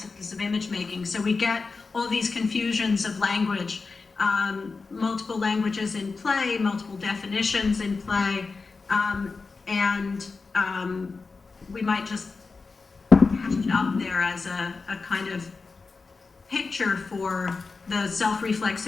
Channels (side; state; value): right; quieter; 4.3 dB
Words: of image making. So we get all these confusions of language, multiple languages in play, multiple definitions in play, and we might just have it up there as a kind of picture for the